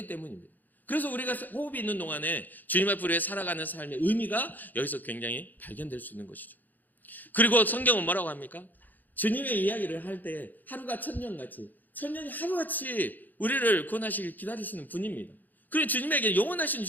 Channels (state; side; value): late; right; 0.085 ms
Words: 때문입니다. 그래서 우리가 호흡이 있는 동안에 주님 앞으로 살아가는 삶의 의미가 여기서 굉장히 발견될 수 있는 것이죠. 그리고 성경은 뭐라고 합니까? 주님의 이야기를 할 때 하루가 천년같이 천년이 하루같이 우리를 구원하시길 기다리시는 분입니다. 그리고 주님에게 영원하신